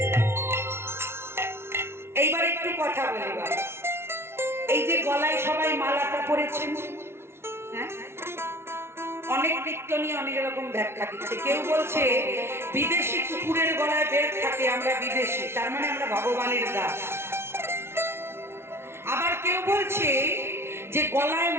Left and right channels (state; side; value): late; left; 0.12 ms